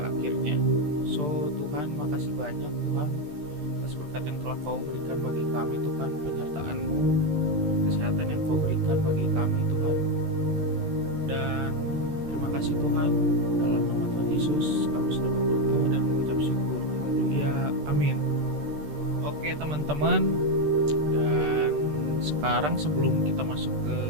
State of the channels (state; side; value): late; left; 13 ms